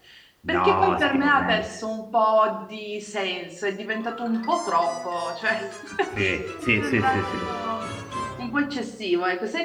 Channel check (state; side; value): identical; both; correlation 1.00